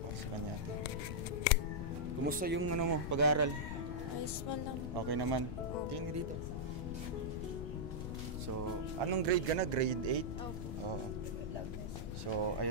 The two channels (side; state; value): left; noise; rumble, 5 dB below the sound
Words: pa sa kanya ate? Kumusta yung mo, pag-aaral? Okay naman. Tingin ka dito. So, anong grade ka na? Grade 8? Oo. So,